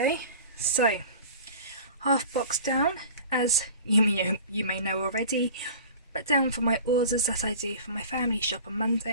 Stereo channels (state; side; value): inverted; both; correlation -0.41